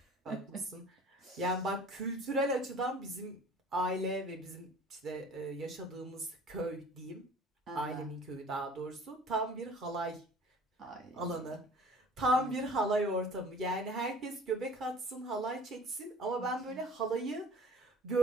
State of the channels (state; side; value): normal; both; correlation 0.47